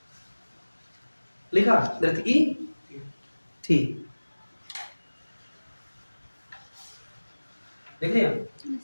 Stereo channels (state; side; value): inverted; both; correlation -1.00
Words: लिखा नर्तकी थी। देख लिया?